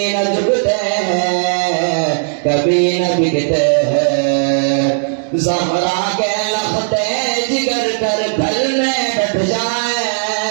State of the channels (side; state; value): left; silent; digital silence